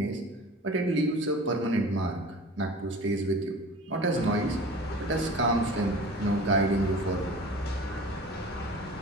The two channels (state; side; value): normal; both; correlation 0.40